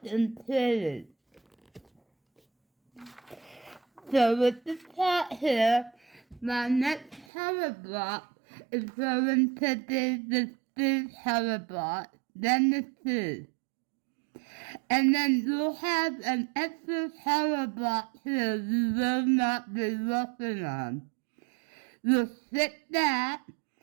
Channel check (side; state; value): left; drops out; at 7.2 s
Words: and pretty. So with the top here, my next color block is going to be the 3 color block, then the 2. And then you'll have an extra color block here you will not be working on. You'll stick that,